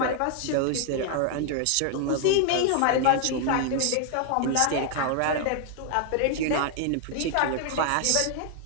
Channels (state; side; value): different; both; correlation 0.00